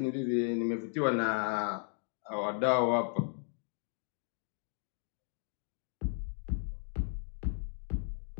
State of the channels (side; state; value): right; silent; 54 dB below the other